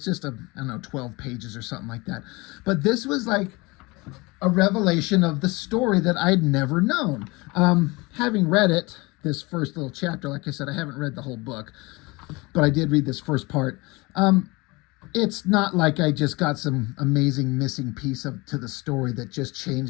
just 12 pages or something like that. But this was like a revelation of the story that I'd never known. Having read it, this first little chapter, like I said, I haven't read the whole book, but I did read this first part. It's not like I just got some amazing missing piece to the story that just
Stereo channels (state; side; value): quieter; right; 24.5 dB